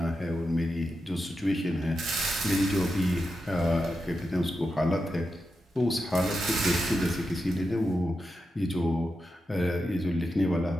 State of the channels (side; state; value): both; normal; correlation 0.88